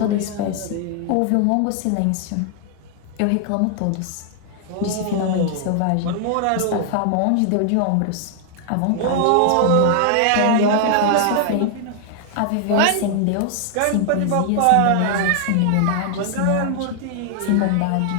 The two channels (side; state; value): both; different; correlation 0.00